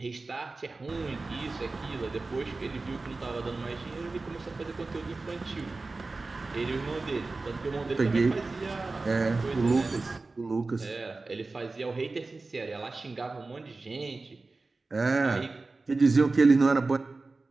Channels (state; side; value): quieter; left; 3.6 dB